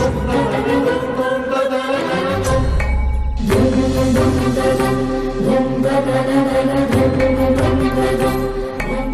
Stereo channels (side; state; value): both; identical; correlation 1.00